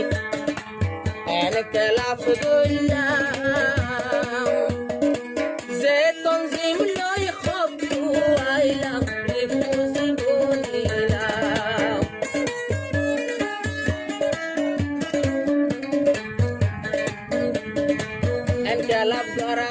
এনকেলাফ দইলাম যে তঞ্জিম লই খবু আইলাম রিফুজি বলিলাম এনকেলাফ ধরা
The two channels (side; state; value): both; identical; correlation 1.00